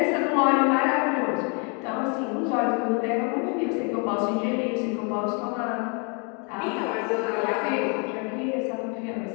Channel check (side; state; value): right; quieter; 35.5 dB